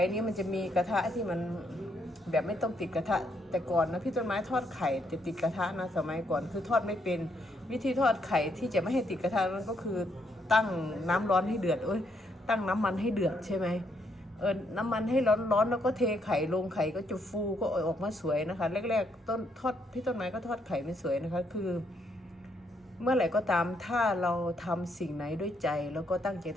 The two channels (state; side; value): normal; both; correlation 0.74